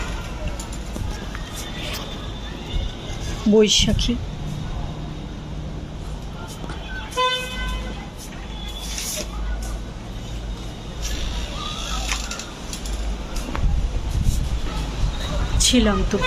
বৈশাখী। ছিলাম তো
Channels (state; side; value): identical; both; correlation 1.00